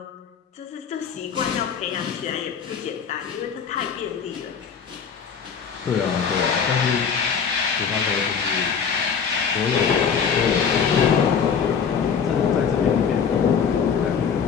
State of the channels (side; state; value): right; quieter; 6.7 dB